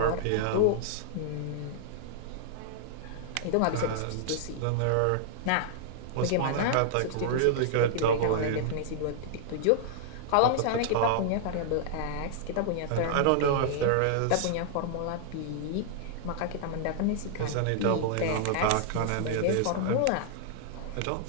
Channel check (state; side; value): different; both; correlation -0.01